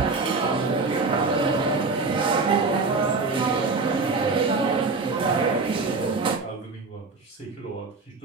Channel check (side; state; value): left; quieter; 4.0 dB